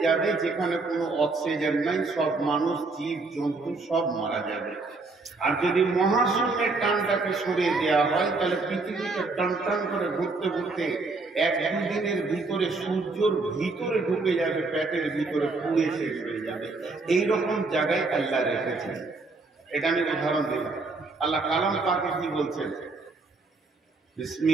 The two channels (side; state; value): left; quieter; 3.6 dB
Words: যাবে যেখানে কোনো অক্সিজেন নাই, সব মানুষ জীব জন্তু সব মারা যাবে। আর যদি মহাশূন্যের টানটাকে সরিয়ে দেওয়া হয়, তাহলে পৃথিবীটা টান টান করে ঘুরতে ঘুরতে 1-2 দিনের ভিতরে সূর্যর ভিতরে ঢুকে যাবে, পেটের ভিতরে পুড়ে শেষ হয়ে যাবে। এইরকম জায়গায় আল্লাহ রেখেছেন। এটা আমি উদাহরণ দিলাম। আল্লাহ কালাম পাকে কি বলছেন?